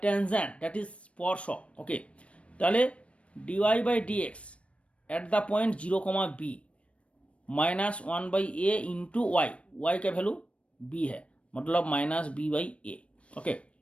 tangent, that is स्पर्शक। ओके, ताहले dy/dx at the point 0, b minus 1/a into y का वैल्यू b है, मतलब माइनस b/a। ओके,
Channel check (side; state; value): right; late; 0.062 ms